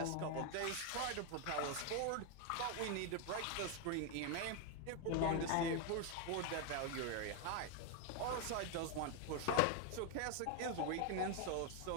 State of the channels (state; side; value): different; both; correlation 0.01